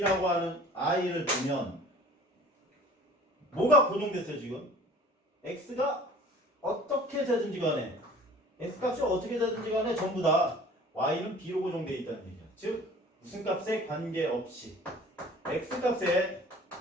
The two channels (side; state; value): both; normal; correlation 0.47